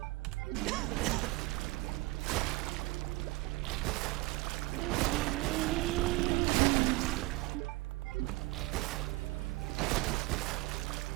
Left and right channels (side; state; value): left; quieter; 21.8 dB